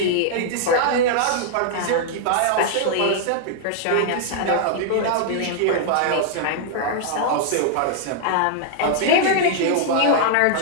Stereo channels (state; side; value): different; both; correlation -0.01